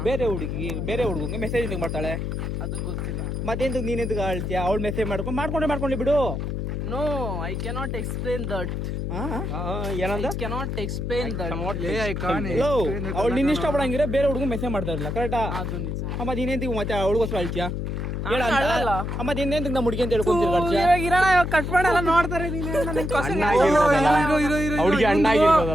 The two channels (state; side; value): noise; left; hum, 3 dB below the sound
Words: ಬೇರೆ ಹುಡುಗಂಗೆ ಮೆಸೇಜ್ ಮಾಡ್ತಾಳೆ. ಅದು ಗೊತ್ತಿಲ್ಲ. ಮತ್ತೆಂತ ನೀನ್ ಎಂತ ಹೇಳ್ತೀಯ? ಅವಳು ಮೆಸೇಜ್ ಮಾಡ್ಕೊಂಡ್ಲಿ ಬಿಡು. No, I cannot explain that. ಏನಂದ? Cannot explain that. ಅವಳು ನಿನ್ನ ಇಷ್ಟ ಪಡಂಗಿರ ಬೇರೆ ಹುಡುಗ ಮೆಸೇಜ್ ಮಾಡ್ತಾ ಇರಲ್ಲ, ಕರೆಕ್ಟಾ? ಅದು ನಿಜ. ಮತ್ತೆ ನೀನೇಂತ ಮತ್ತೆ ಅವಳಿಗೋಸ್ಕರ ಹೇಳ್ತೀಯಾ? ಮತ್ತೆ ಇನ್ನೇಂತ ನಮ್ಮ ಹುಡುಗಿ ಅಂತ ಹೇಳ್ಕೊಂತೀರ? ಕಟ್ ಮಾಡಲ್ಲ ನೋಡ್ತಾರೆ.